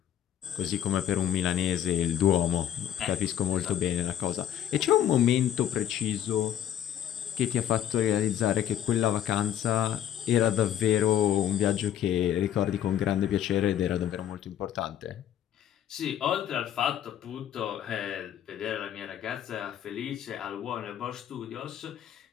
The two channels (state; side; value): quieter; right; 10.6 dB